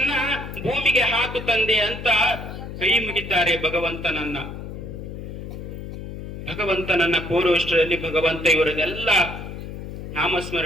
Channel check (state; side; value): noise; left; hum, 9 dB below the sound